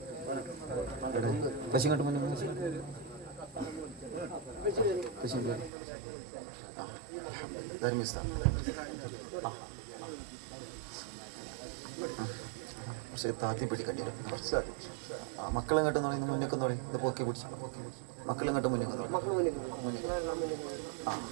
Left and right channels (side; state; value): left; drops out; at 5.7 s